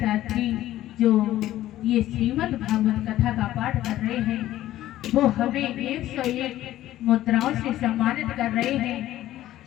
जो ये श्रीमद् भागवत कथा का पाठ कर रहे हैं, वो हमें 101 मुद्राओं से सम्मानित कर रहे हैं।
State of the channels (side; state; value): right; quieter; 14.1 dB